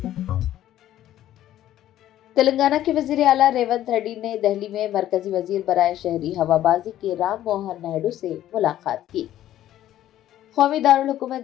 तेलंगाना के वजीर आला रेवंत रेड्डी ने दिल्ली में मरकजी वजीर बराए शहरी हवाबाजी के राम मोहन नायडू से मुलाकात की। कौमी दारुल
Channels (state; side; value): quieter; right; 12.8 dB